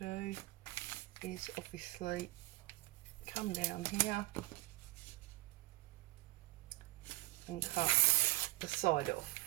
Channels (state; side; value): quieter; left; 20.8 dB